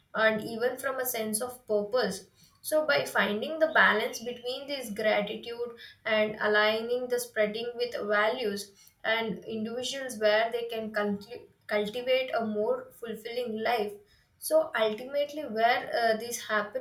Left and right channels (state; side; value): identical; both; correlation 1.00